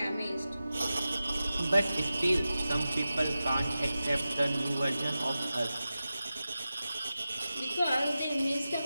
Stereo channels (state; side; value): inverted; both; correlation -0.94